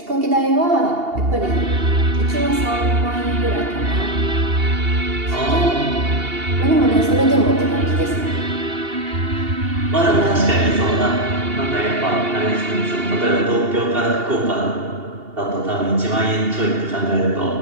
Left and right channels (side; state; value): left; late; 2.8 ms